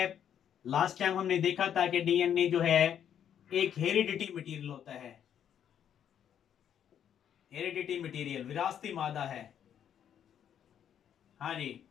लास्ट टाइम हमने देखा था कि डीएनए जो है एक हेरिडिटी मटेरियल होता है। हेरिडिटी मटेरियल विरासती मादा है। हाँ जी।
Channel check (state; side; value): quieter; right; 9.3 dB